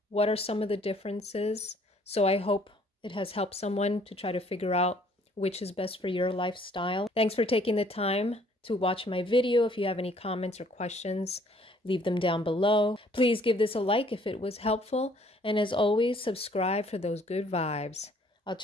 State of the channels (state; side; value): normal; both; correlation 0.61